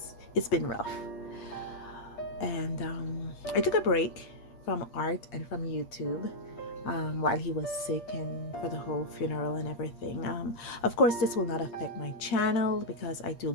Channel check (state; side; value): late; right; 8.5 ms